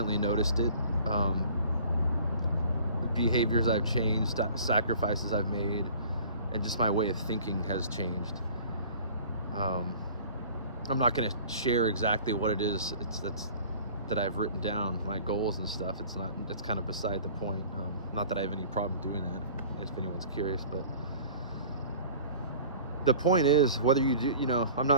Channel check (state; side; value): inverted; both; correlation -0.46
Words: noticed it. Behaviors I've changed, sacrifices I've made, and just my way of thinking has changed. I'm not going to share exactly what it is that I've written down, my goals and stuff. It's kind of beside the point. Not that I have any problem doing that, if anyone's curious, but the point is, whether you do, I'm